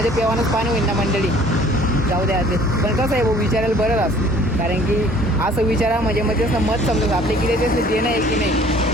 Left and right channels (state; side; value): normal; both; correlation 0.53